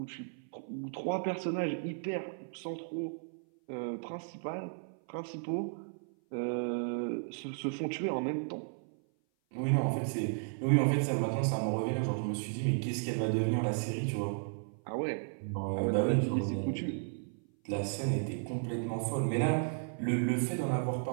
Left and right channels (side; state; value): left; silent; 55 dB below the other